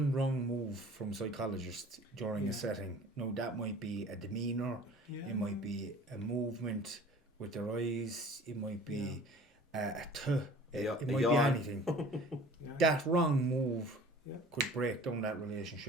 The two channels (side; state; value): both; normal; correlation 0.47